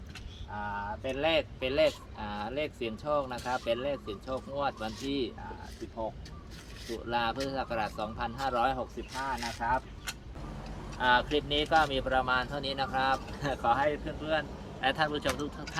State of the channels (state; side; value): identical; both; correlation 1.00